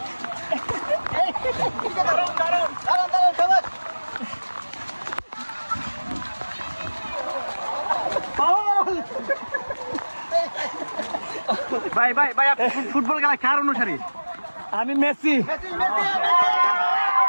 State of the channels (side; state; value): both; inverted; correlation -1.00